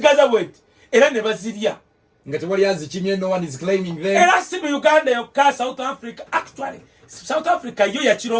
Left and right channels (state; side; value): identical; both; correlation 1.00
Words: wet era ne bazirya nga tewali azikimye no one is claiming them era si mu Uganda yokka South Africa actually South Africa yo ya